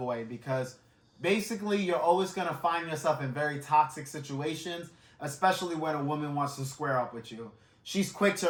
because basically you're always going to find yourself in very toxic situations, especially when a woman wants to square up with you. She's quick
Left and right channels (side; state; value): both; identical; correlation 1.00